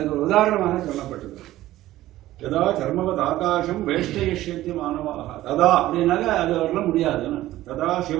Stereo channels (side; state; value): left; quieter; 15.3 dB